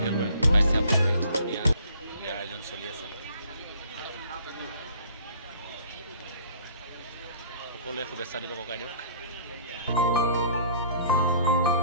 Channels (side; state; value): both; inverted; correlation -0.54